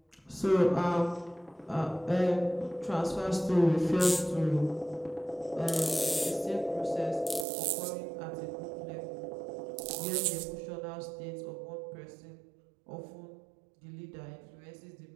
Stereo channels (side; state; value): left; drops out; at 7.5 s